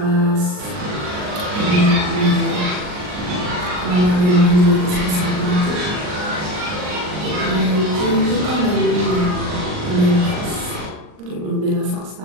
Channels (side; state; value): left; late; 39 ms